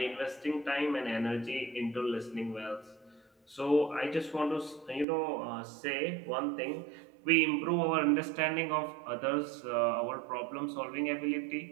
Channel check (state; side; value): drops out; left; at 5.1 s